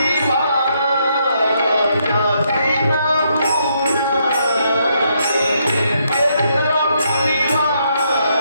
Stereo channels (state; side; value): inverted; both; correlation -0.75